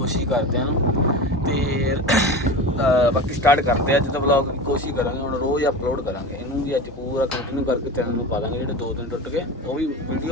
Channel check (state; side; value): normal; both; correlation 0.28